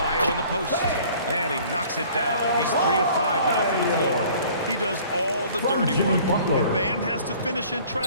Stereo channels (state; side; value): inverted; both; correlation -0.52